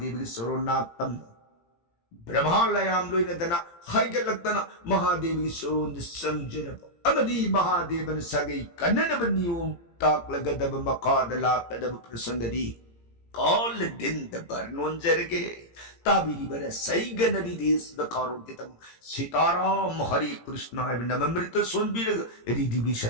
की सोरोनातम ब्रह्मा लयाम लोइन दना हाइगलक्तना महादेव की सोरोंद संजरब अमदी महादेवन सगै कन्ननब नियम ताकलगदब मकादला तदब प्रसंगदी कॉल दिन दबर नोंजरगे ताबिरी बर सही गनरी देश द कारों के तम सीताराम हरे कृष्ण नममृत सोनबीर रिधि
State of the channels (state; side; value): late; right; 17 ms